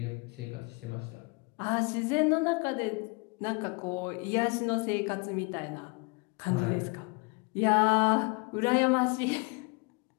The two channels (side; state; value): right; quieter; 30.7 dB